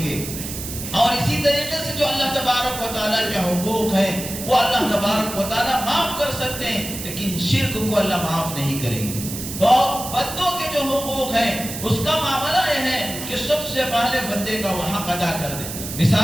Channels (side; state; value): right; noise; hiss, 8 dB below the sound